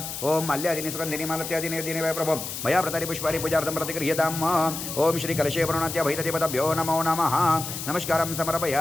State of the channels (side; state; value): left; noise; hiss, 7 dB below the sound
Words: ओम माल्यादिनी सुगंधिनी मालत्यादिनी दिने वै प्रभो मया प्रतारी पुष्पारी पूजार्थं प्रतिगृह्यताम् ओम श्री कलशे वरुणात्या भैतदेवताभ्यो नमो नमः नमस्कारं